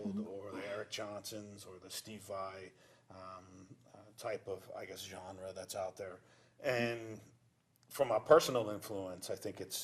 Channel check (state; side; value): identical; both; correlation 1.00